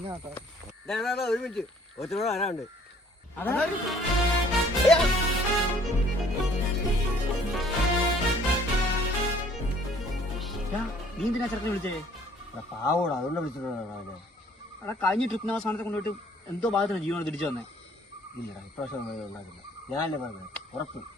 ഒരു മിനിറ്റ് ഒറ്റയോട് വരാനുണ്ട്. നീ എന്തിനാ ചെറുക്കനെ വിളിച്ചേ? പാവോടാ, അതുകൊണ്ട് വിളിച്ചിട്ടുണ്ടോ? എടാ കഴിഞ്ഞ ട്രിപ്പിന് അവസാനത്തെ കൊണ്ടുപോയിട്ട് എന്തോ ഭാഗത്തിന് ജീവനോട് തിരിച്ചു വന്നേ. ഇല്ലടാ, ഇപ്രാവശ്യം ഉണ്ടാക്കില്ല. ഞാനല്ലേ പറഞ്ഞത്, ഉറപ്പ്.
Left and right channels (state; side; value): normal; both; correlation 0.58